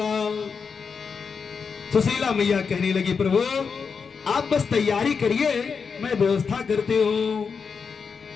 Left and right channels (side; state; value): right; quieter; 5.7 dB